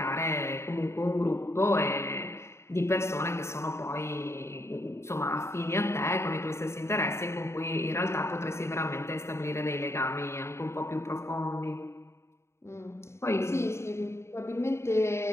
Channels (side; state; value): right; late; 0.13 ms